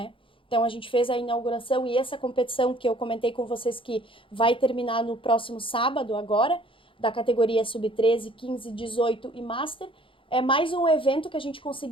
Então a gente fez a inauguração e essa competição que eu comentei com vocês que vai terminar no próximo sábado agora, da categoria sub-13, 15, 18 e Master, é mais um evento que a gente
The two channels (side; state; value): right; late; 0.25 ms